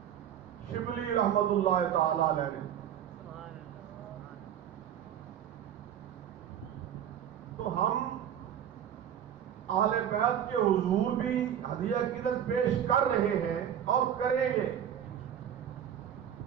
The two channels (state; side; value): quieter; left; 9.7 dB